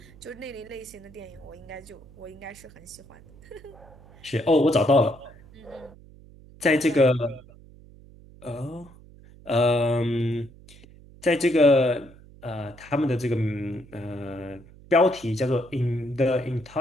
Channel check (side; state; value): right; noise; hum, 22 dB below the sound